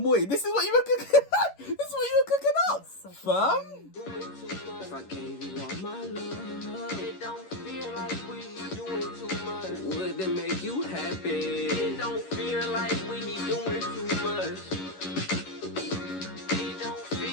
Morty. This is what you were cooking up. This is what you were cooking up, fam. If I gave you all my love, it don't feel like we doing too much. Would that make you happy? It don't feel like we doing too much. It don't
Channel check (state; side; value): late; right; 11 ms